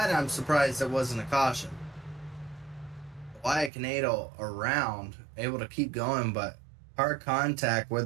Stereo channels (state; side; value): drops out; left; at 3.7 s